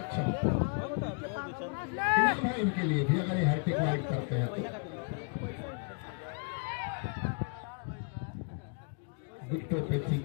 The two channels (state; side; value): quieter; right; 39.4 dB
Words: इनके लिए भी अगर ये हैट्रिक वाइड करते हैं विकेटों पे थी